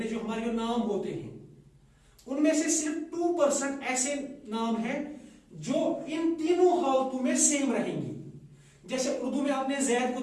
जो हमारे जो नाम होते हैं, उनमें से सिर्फ 2% ऐसे नाम हैं जो इन तीनों हालतों में सेम रहेंगे। जैसे उर्दू में आपने जैद को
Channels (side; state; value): both; identical; correlation 1.00